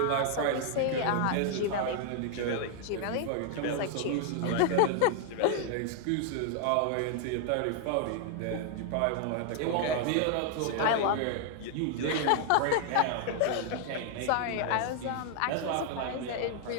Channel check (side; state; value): both; different; correlation 0.00